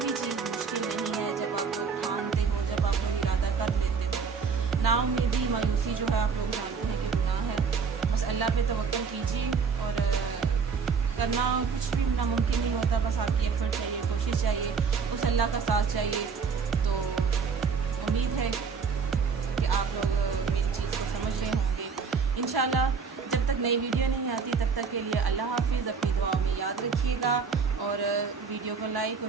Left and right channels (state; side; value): quieter; left; 5.6 dB